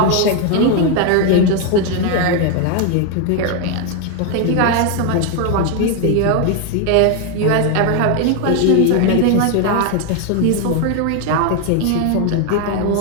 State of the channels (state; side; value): different; both; correlation 0.01